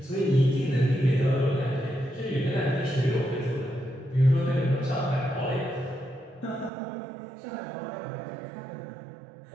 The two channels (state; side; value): drops out; left; at 6.7 s